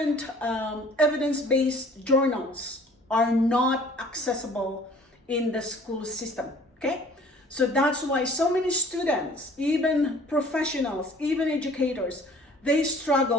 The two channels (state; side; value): normal; both; correlation 0.52